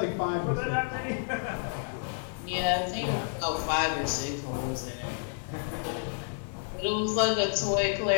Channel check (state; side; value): silent; right; digital silence